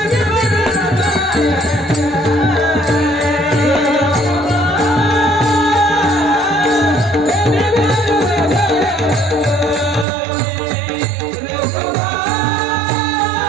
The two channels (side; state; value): left; drops out; at 10.1 s